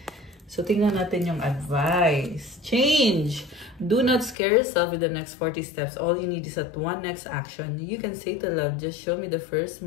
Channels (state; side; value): drops out; right; at 4.4 s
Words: So, tingnan natin yung advice. Change. Do not scare yourself with the next 40 steps. All you need is that one next action. You can say to love, just show me the first